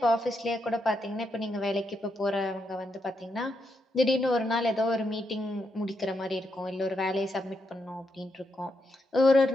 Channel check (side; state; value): both; normal; correlation 0.81